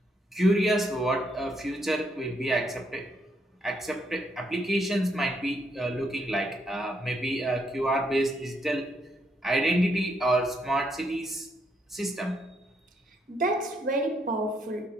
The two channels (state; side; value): normal; both; correlation 0.75